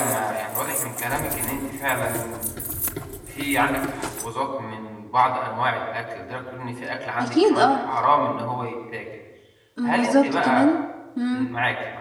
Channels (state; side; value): identical; both; correlation 1.00